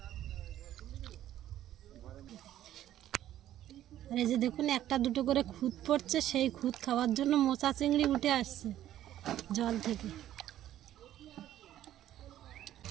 আর এই যে দেখুন একটা দুটো করে খুদ পড়ছে, সেই খুদ খাওয়ার জন্য মোচা চিংড়ি উঠে আসছে জল থেকে।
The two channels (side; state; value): left; quieter; 12.5 dB